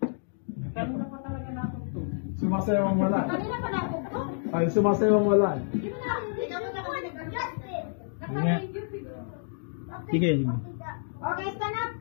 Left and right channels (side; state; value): right; silent; digital silence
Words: Sumasewang wala. Kanina pa napukpok. Ay, sumasewang wala. Di mo na. Hindi mo na kasi Justice. Sige. Okay, stand up.